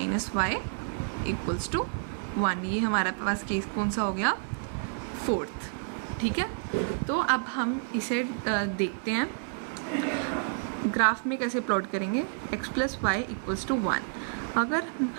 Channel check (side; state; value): left; silent; 57 dB below the other